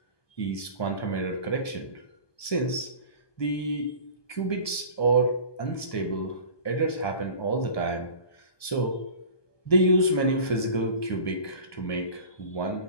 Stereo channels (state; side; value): late; right; 1.2 ms